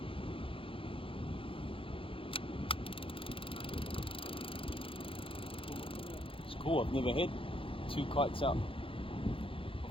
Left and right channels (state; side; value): late; right; 0.26 ms